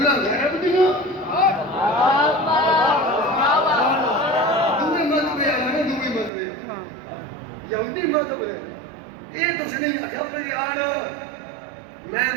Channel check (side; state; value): left; drops out; at 6.3 s